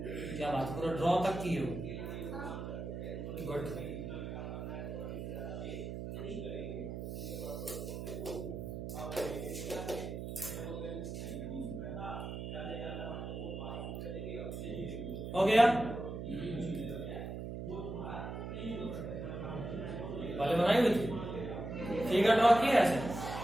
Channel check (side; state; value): right; noise; hum, 6 dB below the sound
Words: क्या बात, पूरा ड्रॉ तक की हो? गुड। हो गया? पहले बनाई हुई थी, फिगर ड्रॉ किया ऐसे,